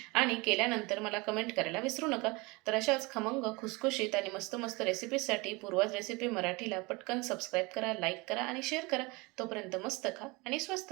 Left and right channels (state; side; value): quieter; left; 25.5 dB